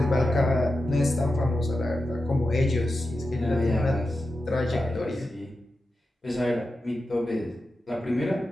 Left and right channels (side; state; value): both; normal; correlation 0.90